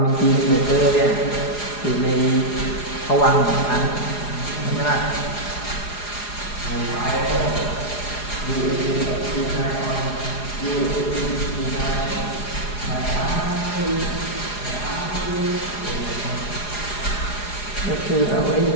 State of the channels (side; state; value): right; late; 4.8 ms